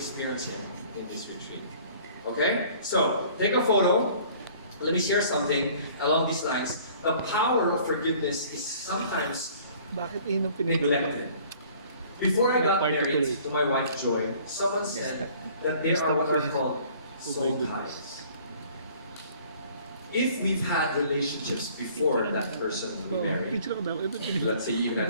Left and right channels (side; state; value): both; inverted; correlation -0.53